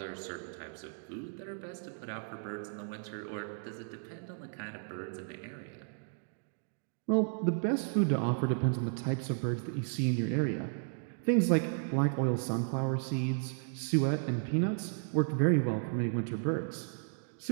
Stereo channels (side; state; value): left; silent; digital silence